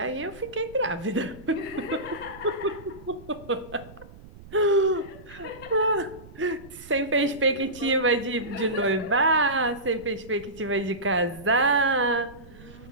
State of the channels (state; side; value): noise; right; rumble, 19 dB below the sound